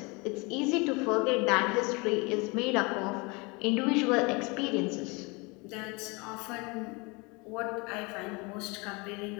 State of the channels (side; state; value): right; quieter; 28.0 dB